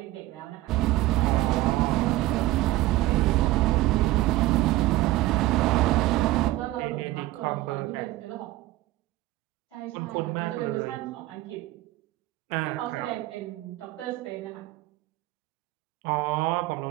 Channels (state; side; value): quieter; left; 17.1 dB